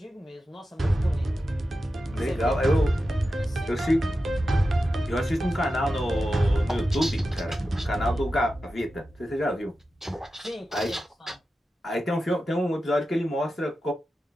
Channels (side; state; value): both; normal; correlation 0.92